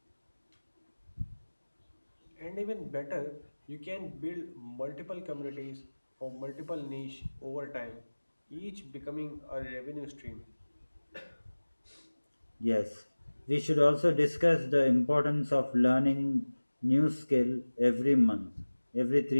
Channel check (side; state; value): both; inverted; correlation -1.00